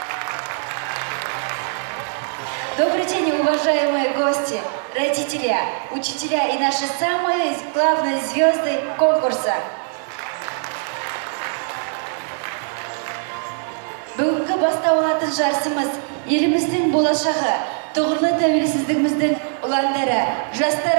Добрый день, уважаемые гости, родители, учителя и наши самые главные звезды конкурса. Бүгінгі басталатын жарысымыз еліміздің болашағы, тұғырлы тәуелсіздігіміздің ұландары,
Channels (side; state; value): left; silent; 61 dB below the other